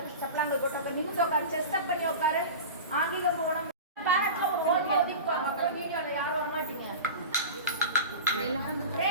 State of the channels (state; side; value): inverted; both; correlation -0.31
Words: சப்பலாங்கள் போட்டு உட்காரு நிமிஷம் உட்காரு செஸ்ட் அப் பண்ணி உட்காரு ஆங்கிலம் போகணும் பேரட்ல ஒரு ஹோல் மவுத் உட்காரு அப்புறம் வீடியோல யாரும் வர மாட்டீங்க